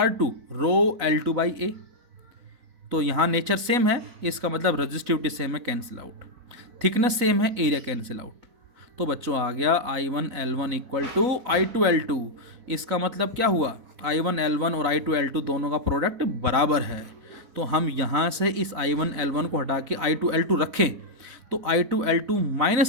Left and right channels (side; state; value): left; late; 4.0 ms